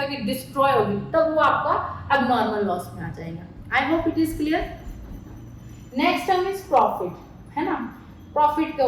कि डिस्ट्रॉय होगी, तब वो आपका अब नॉर्मल लॉस में आ जाएगा। आई hope it is clear. Next term is profit, है ना। प्रॉफिट क्या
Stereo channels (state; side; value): identical; both; correlation 1.00